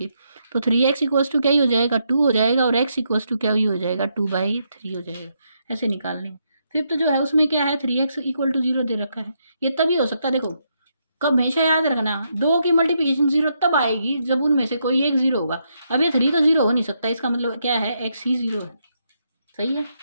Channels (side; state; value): both; inverted; correlation -0.79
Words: तो 3x इक्वल्स टू क्या ही हो जाएगा, 2 हो जाएगा। और x इक्वल्स टू क्या ही हो जाएगा, 2/3 हो जाएगा। ऐसे निकालने। फिफ्थ जो है उसमें क्या है, 3x इक्वल टू जीरो दे रखा है। ये तभी हो सकता है, देखो कब, हमेशा याद रखना, दो की मल्टीप्लिकेशन जीरो तब आएगी जब उनमें से कोई एक जीरो होगा। अब ये 3 तो जीरो हो नहीं सकता, इसका मतलब क्या है, x ही जीरो है। सही है,